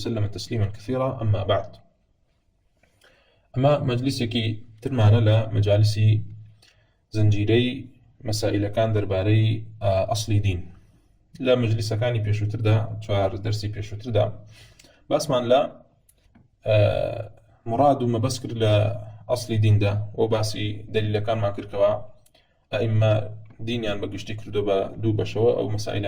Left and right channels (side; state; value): both; identical; correlation 1.00